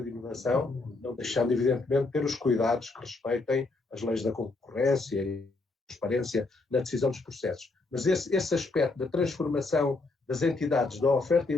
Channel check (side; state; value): right; quieter; 3.4 dB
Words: de inovação, não deixando, evidentemente, ter os cuidados que respeitem as leis da concorrência transparência na decisão dos processos. Mas esse aspecto da transformação das entidades, da oferta